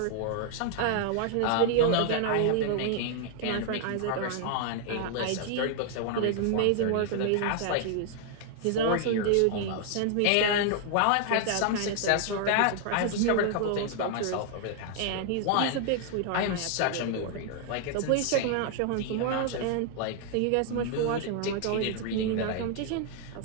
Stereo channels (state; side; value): different; both; correlation 0.00